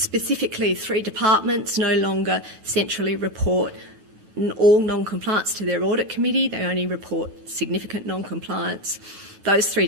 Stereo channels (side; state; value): left; late; 9.9 ms